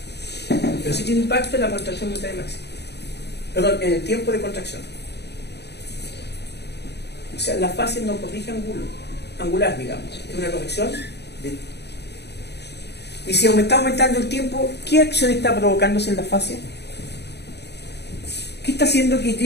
Pero sí tiene impacto en la contracción monetaria máxima. Perdón, en el tiempo de contracción. O sea, la fase no corrige angular, digamos. Es una corrección de... Y si está aumentando el tiempo, ¿qué acción está provocándose en la fase? ¿Qué está haciendo que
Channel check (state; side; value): late; right; 0.49 ms